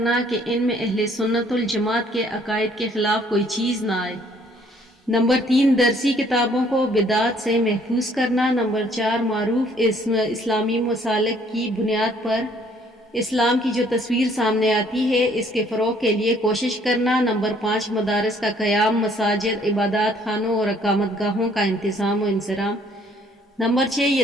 کہ ان میں اہل سنت الجماعت کے عقائد کے خلاف کوئی چیز نہ آئے۔ نمبر 3 درسی کتابوں کو بدعت سے محفوظ کرنا۔ نمبر 4 معروف اسلامی مسالک کی بنیاد پر اسلام کی جو تصویر سامنے آتی ہے اس کے فروغ کے لیے کوشش کرنا۔ نمبر 5 مدارس کا قیام، مساجد، عبادات خانوں اور اقامت گاہوں کا انتظام و انصرام۔ نمبر 6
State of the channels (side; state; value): both; normal; correlation 0.62